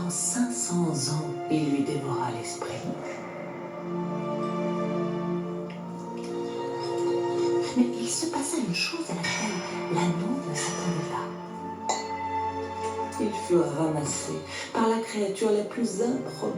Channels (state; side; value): identical; both; correlation 1.00